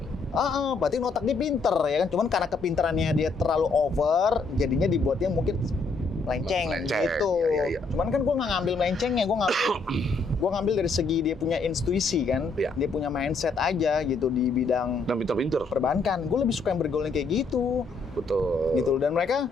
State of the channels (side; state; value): right; quieter; 3.9 dB